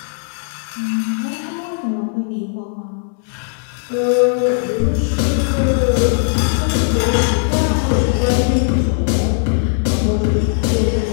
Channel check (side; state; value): right; silent; digital silence